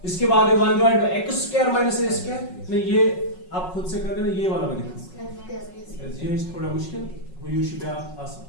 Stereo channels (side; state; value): right; late; 5.4 ms